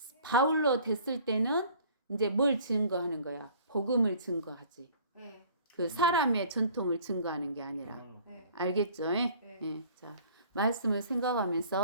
바울로 됐을 때는 이제 뭘 증거하는 거야? 복음을 증거하지. 네. 그 사람의 전통을 증거하는 게 아니라. 네. 알겠죠? 네. 자, 말씀을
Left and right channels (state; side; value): inverted; both; correlation -0.51